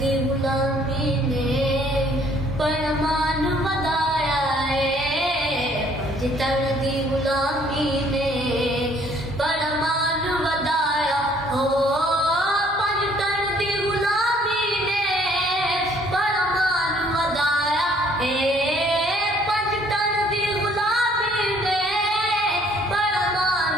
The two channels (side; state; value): both; normal; correlation 0.61